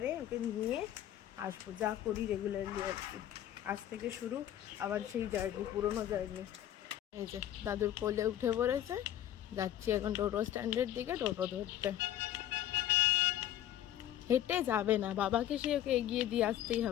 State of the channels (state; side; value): quieter; right; 12.0 dB